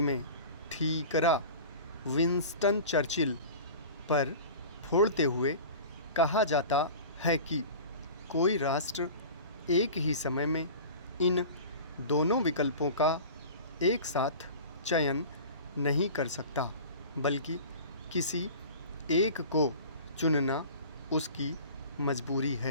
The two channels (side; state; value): both; inverted; correlation -0.38